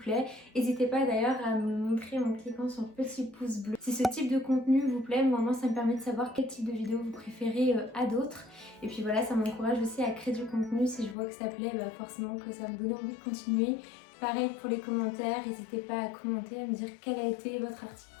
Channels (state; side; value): drops out; right; at 11.2 s